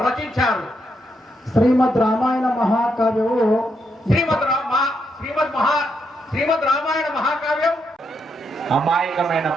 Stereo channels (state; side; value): normal; both; correlation 0.79